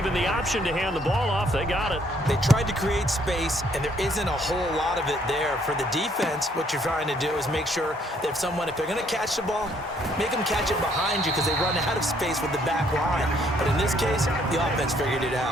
the option to hand the ball off. They got it. They tried to create space, and there isn't a whole lot of it there. For the defense, what you're trying to do is make sure that if they're going to catch the ball, make them catch it behind you because they run out of space with the back line. But in this case, the offense figured it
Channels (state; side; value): normal; both; correlation 0.66